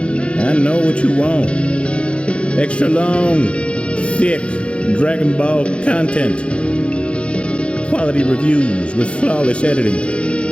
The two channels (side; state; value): right; late; 0.059 ms